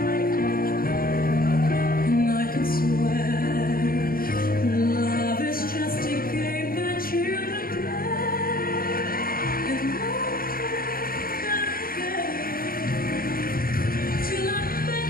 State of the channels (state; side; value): late; right; 0.42 ms